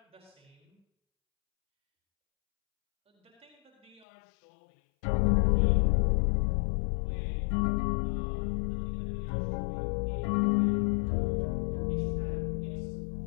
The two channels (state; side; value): drops out; right; at 4.0 s